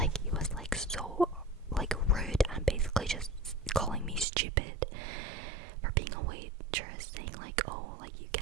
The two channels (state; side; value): drops out; left; at 4.2 s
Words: he was like so like rude and basically just calling me stupid for being a waitress, saying like, oh, like you